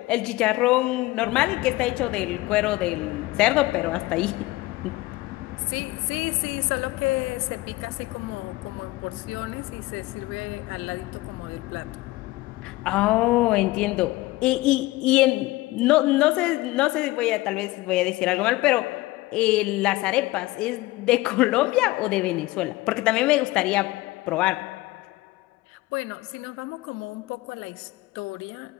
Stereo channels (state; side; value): quieter; right; 19.5 dB